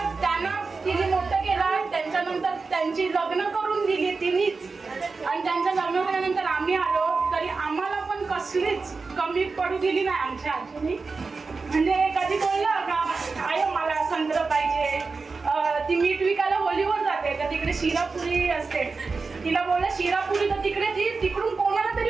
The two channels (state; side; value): quieter; left; 4.3 dB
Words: त्यांना तिने मोठं केलं, त्यांच्यानंतर त्यांची लग्न करून दिली तिनेच, आणि त्यांचं लग्न झाल्यानंतर आम्ही आलो तरी आम्हाला पण कसलीच कमी पडू दिली नाही आमच्या आजीने. म्हणजे कधी बोललं का आय मला संत्र पाहिजे, ती मीठ विकायला होलीवर जाते तर तिकडे शिरापुरी असते, तिला बोललं शिरापुरी तर तिकडे ती तिकडून कोणाला तरी